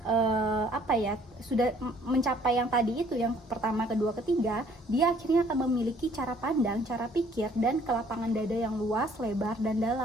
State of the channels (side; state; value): both; normal; correlation 0.60